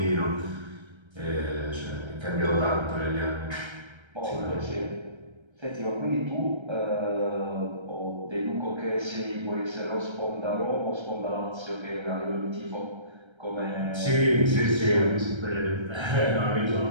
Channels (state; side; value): late; left; 1.3 ms